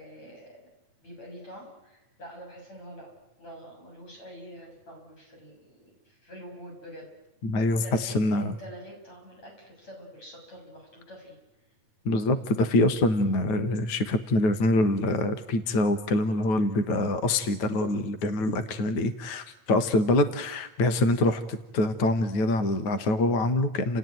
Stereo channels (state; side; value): late; right; 9.3 ms